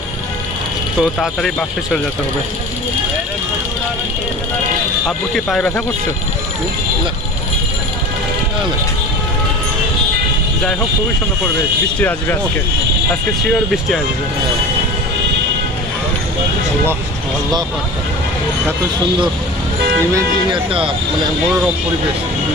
তো তাড়াতাড়ি বাসে চলে যেতে হবে। আব্বু কি পায়ে ব্যথা করছে? না না, যাই হোক, খুবই সুন্দর পরিবেশ। বৃষ্টি আসবে আজকে শিওর বৃষ্টি আসবে। আল্লাহ আল্লাহ, এত সুন্দর ইমেজিং একটা মানে মনোরম পরিবেশ,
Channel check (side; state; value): both; normal; correlation 0.35